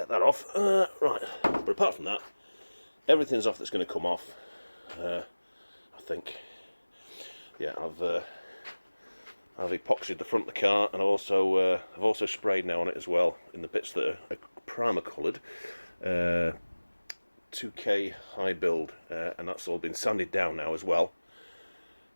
that off. Right, but apart from that, everything's off that's going to come off. I think. Yeah, I've epoxied the front of the car, and I've also sprayed now on it as well in the bits that are primer coloured. 2K high build, and that's all been sanded down now as well,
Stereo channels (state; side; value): inverted; both; correlation -1.00